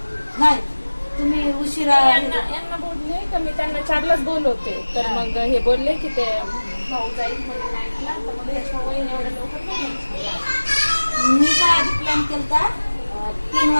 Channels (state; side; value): inverted; both; correlation -1.00